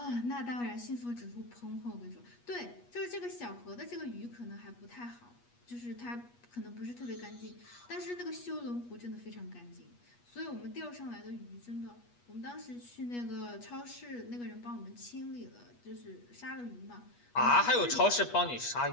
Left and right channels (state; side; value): late; right; 8.3 ms